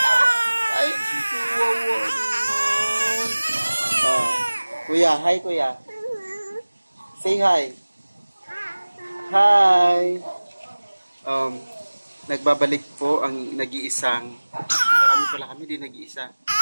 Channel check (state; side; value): inverted; both; correlation -1.00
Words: Ay, kuya, hi kuya. Say hi. Hi. Nagbabalik po ang nag-iisang marami pala kami din nag-iisa.